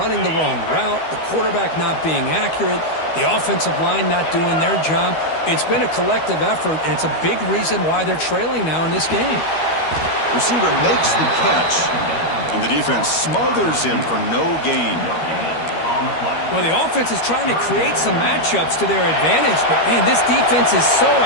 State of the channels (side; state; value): right; late; 13 ms